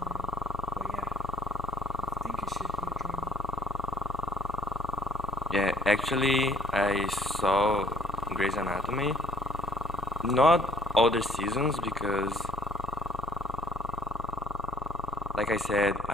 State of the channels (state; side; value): normal; both; correlation 0.59